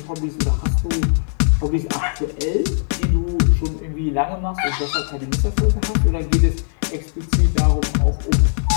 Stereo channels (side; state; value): right; silent; digital silence